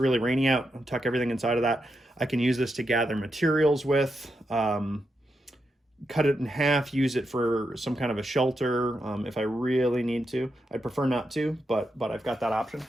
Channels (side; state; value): both; normal; correlation 0.85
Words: rainy out, I'll tuck everything inside of that. I can use this to gather materials with, cut it in half, use it for some kind of a shelter if I really need to. I'd prefer not to, but I've got that option.